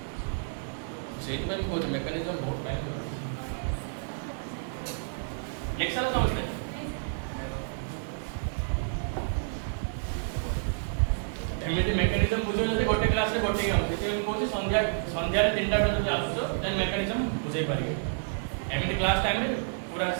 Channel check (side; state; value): left; silent; digital silence